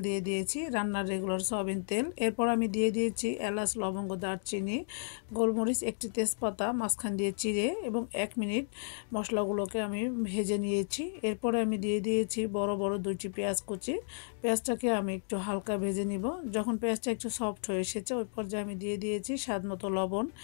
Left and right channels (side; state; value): right; silent; digital silence